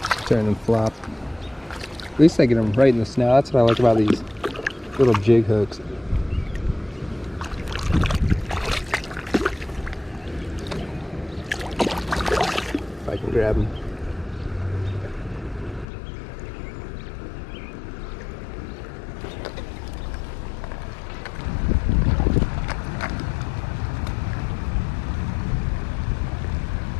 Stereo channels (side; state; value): right; drops out; at 15.9 s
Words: turn and flop. At least I get them right in the snout. That's what I like about these little jig hooks. If I can grab them.